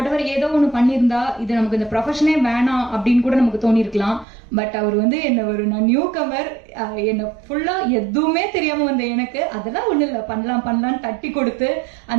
ஏதோ ஒன்று பண்ணியிருந்தா இது நமக்கு இந்த ப்ரொஃபஷனே வேணாம் அப்படின்னு கூட நமக்கு தோணியிருக்கலாம். பட் அவர் வந்து நான் நியூ கமர், என்னை ஃபுல்லாக எதுவுமே தெரியாமல் வந்த எனக்கு அதெல்லாம் ஒன்றும் இல்லை, பண்ணலான்னு தட்டி கொடுத்து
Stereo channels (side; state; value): left; drops out; at 4.2 s